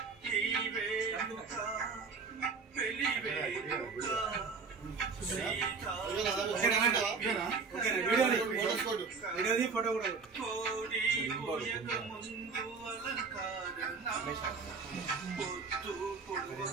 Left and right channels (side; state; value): left; quieter; 4.9 dB